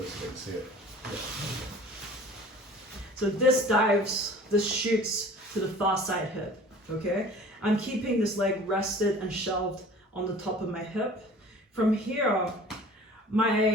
bit so they can see it. Yeah. So this shoots to the far side hip, okay? I'm keeping this leg rested and shelved on the top of my hip. From here,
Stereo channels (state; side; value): normal; both; correlation 0.46